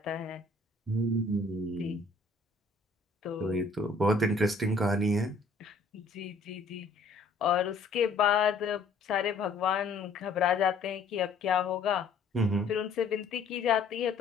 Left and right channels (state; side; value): quieter; right; 3.6 dB